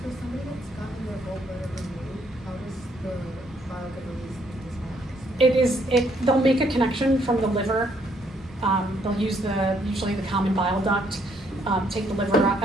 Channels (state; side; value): normal; both; correlation 0.69